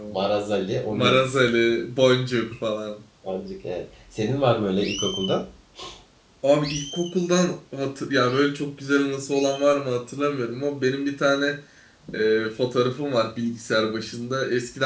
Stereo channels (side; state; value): both; identical; correlation 1.00